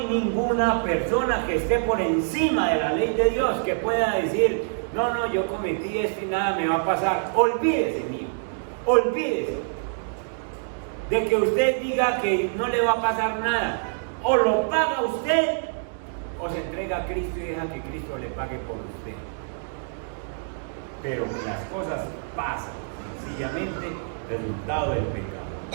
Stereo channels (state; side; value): silent; left; digital silence